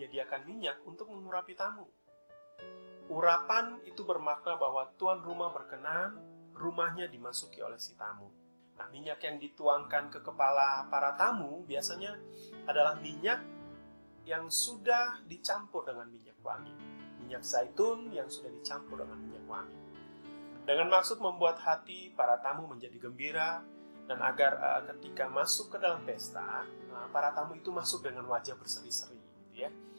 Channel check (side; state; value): both; inverted; correlation -0.99